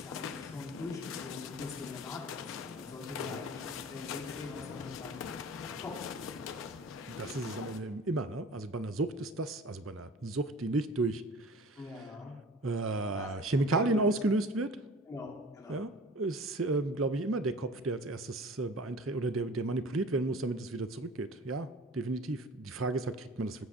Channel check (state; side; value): normal; both; correlation 0.42